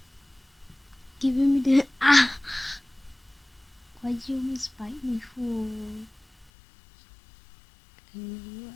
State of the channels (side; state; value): right; drops out; at 6.5 s